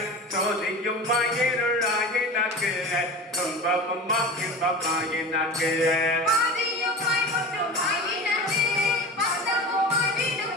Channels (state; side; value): normal; both; correlation 0.32